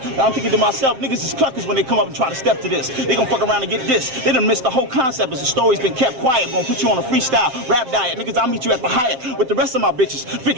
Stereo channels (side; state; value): left; late; 7.7 ms